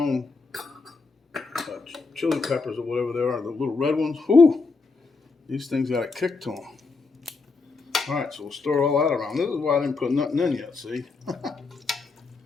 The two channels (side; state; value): right; quieter; 4.2 dB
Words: chili peppers or whatever they are, the little red ones. Whew! These things got a kick to them. All right, so we'll stir all that around. This is why I didn't put nothing in yet, see?